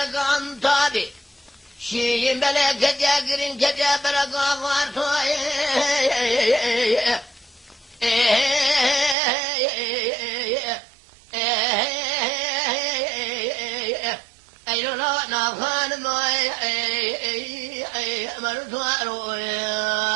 عن طابي شي بلا كجاقرين كجبرك عفارتو أيلو لا نافان ما مرتوارو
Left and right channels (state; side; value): drops out; left; at 9.2 s